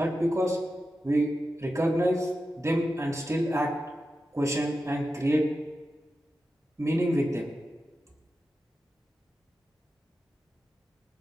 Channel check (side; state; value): both; normal; correlation 0.91